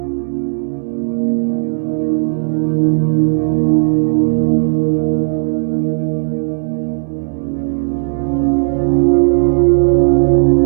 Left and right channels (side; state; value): left; silent; 68 dB below the other